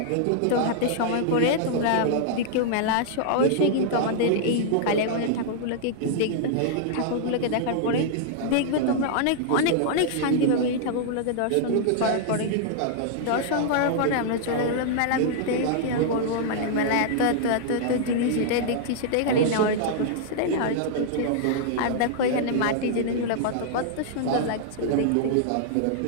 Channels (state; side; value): different; both; correlation -0.01